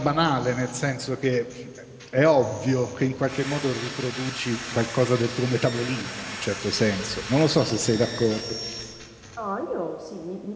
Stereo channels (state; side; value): identical; both; correlation 1.00